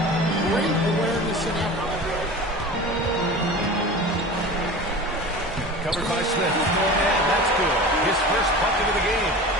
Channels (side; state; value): both; normal; correlation 0.35